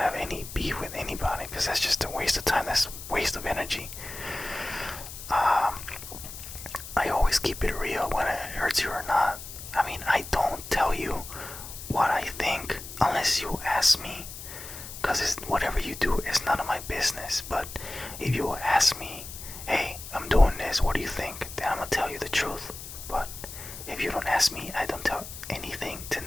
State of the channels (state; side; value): noise; left; hiss, 12 dB below the sound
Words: any beef with anybody because that's just a waste of time. That's a waste of energy. I always keep it real when it hurts you or not. I mean, I don't tell you what I think unless you ask me, because whatever you do is none of my business. But if you ask me, hey, I'm doing this, what do you think? Then I'm gonna tell you the truth. But if you don't ask me, I don't tell anything to